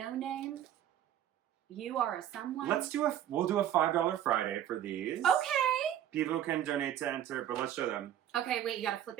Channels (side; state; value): left; quieter; 11.0 dB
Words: name. You are a someone. We'll do a $5 Friday for these. Okay. People can donate to enter, but let's show them. Okay, wait, you gotta flip